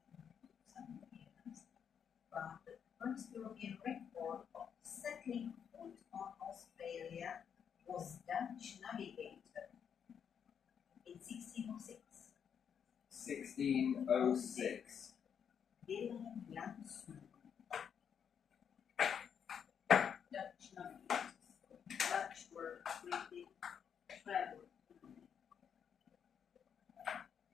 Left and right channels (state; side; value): quieter; right; 7.7 dB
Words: But the first European record of settling foot on Australia was Dutch navigator in 1606. 1606. Willem Janszoon. Dutch navigators. Dutch were really traveled.